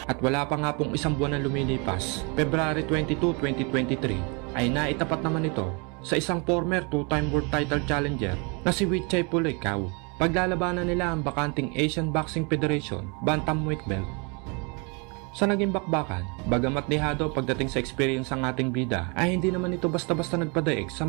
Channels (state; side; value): quieter; left; 32.1 dB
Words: At wala pa nga pong isang buwan na lumilipas, February 22, 2023, ay naitapat naman ito sa isang former 2-time world title challenger na si Vichai Pulekau. Paglalabanan nila ang bakanting Asian Boxing Federation Bantamweight belt. Sa naging bakbakan, bagamat dehado pagdating sa experience ang ating bida, ay hindi naman ito basta-basta nagpadaig sa